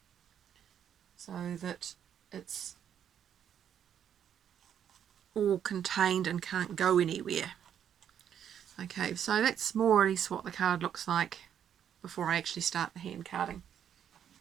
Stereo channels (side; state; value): left; quieter; 9.2 dB